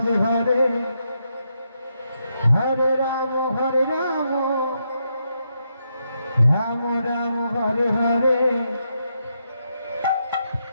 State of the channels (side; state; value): both; inverted; correlation -0.81